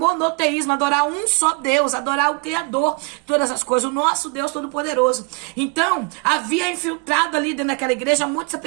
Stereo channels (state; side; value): quieter; left; 31.5 dB